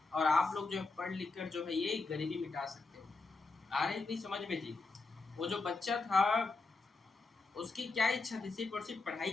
और आप लोग जो है पढ़ लिख कर जो है ये गरीबी मिटा सकते हो। आ रही थी समझ में जी? वो जो बच्चा था उसकी क्या इच्छा थी, सिर्फ और सिर्फ पढ़ाई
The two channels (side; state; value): right; quieter; 3.8 dB